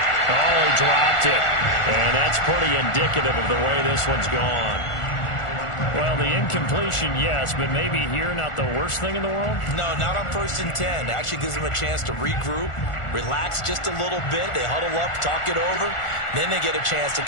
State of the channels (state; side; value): late; right; 1.4 ms